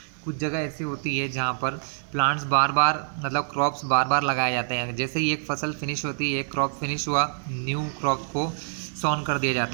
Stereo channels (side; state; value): left; silent; digital silence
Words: कुछ जगह ऐसी होती है जहाँ पर प्लांट्स बार बार, मतलब क्रॉप्स बार बार लगाए जाते हैं। जैसे ही एक फसल फिनिश होती है, एक क्रॉप फिनिश हुआ, न्यू क्रॉप को सॉन कर दिया